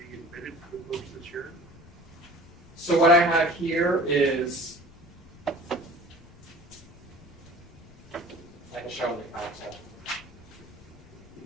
admitted to the books this year? So what I have here is, I can show them the council.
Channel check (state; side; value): noise; left; rumble, 22 dB below the sound